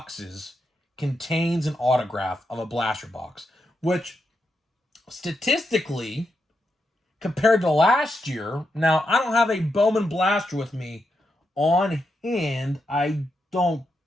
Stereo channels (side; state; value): both; normal; correlation 0.84